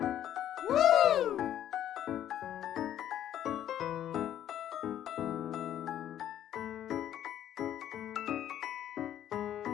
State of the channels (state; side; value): quieter; right; 11.1 dB